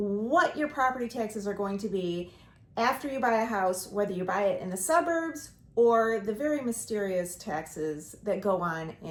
your property taxes are going to be after you buy a house, whether you buy it in the suburbs or the very mysterious taxes that go on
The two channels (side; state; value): both; identical; correlation 1.00